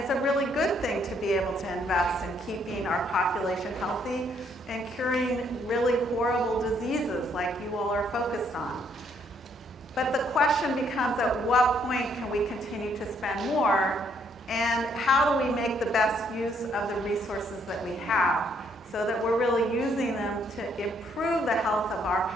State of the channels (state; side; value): normal; both; correlation 0.69